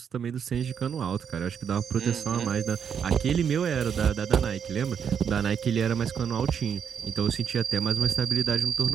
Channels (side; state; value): left; quieter; 7.6 dB